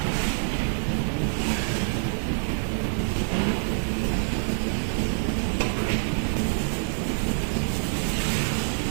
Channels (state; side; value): silent; left; 61 dB below the other